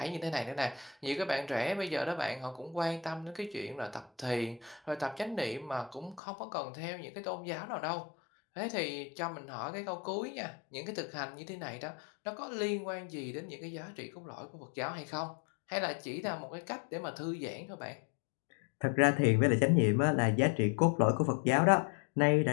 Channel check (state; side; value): drops out; right; at 6.2 s